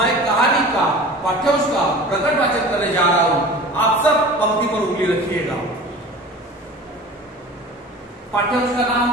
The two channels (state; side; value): normal; both; correlation 0.39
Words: कहानी का पाठ्यांश का प्रकट वाचन करने जा रहा हूं। आप सब पंक्ति पर उंगली रखिएगा। पाठ्यांश का